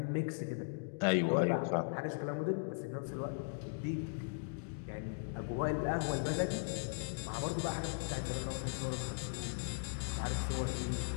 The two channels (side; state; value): right; silent; digital silence